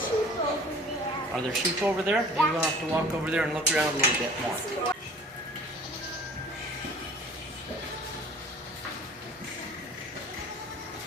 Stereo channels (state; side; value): normal; both; correlation 0.48